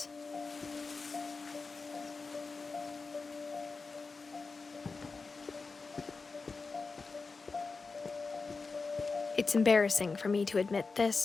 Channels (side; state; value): right; quieter; 4.3 dB